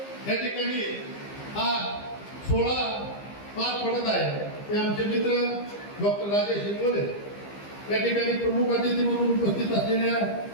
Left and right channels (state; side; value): late; right; 15 ms